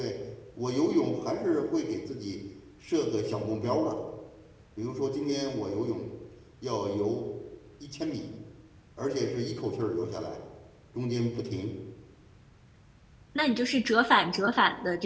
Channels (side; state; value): both; identical; correlation 1.00